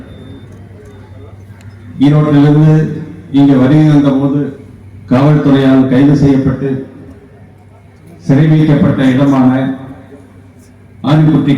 ஈரோட்டிலிருந்து இங்கே வருகை வந்த போது காவல்துறையால் கைது செய்யப்பட்டு சிறை வைக்கப்பட்ட இடமான ஆரிக்குட்டி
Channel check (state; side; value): identical; both; correlation 1.00